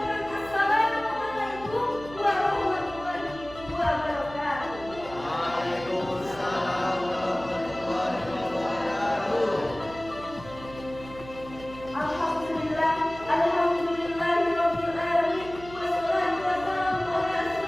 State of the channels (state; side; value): noise; right; hum, 16 dB below the sound